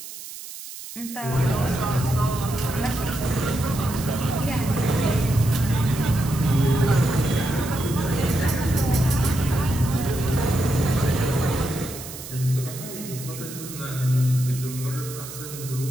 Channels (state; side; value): noise; right; hiss, 12 dB below the sound